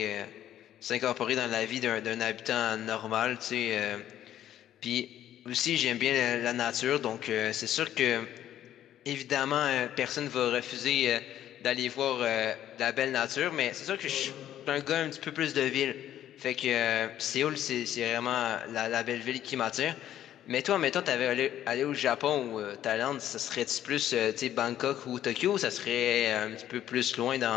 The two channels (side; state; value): right; quieter; 11.6 dB